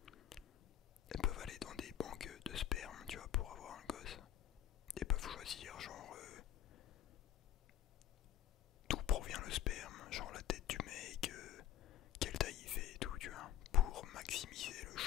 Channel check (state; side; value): quieter; right; 11.4 dB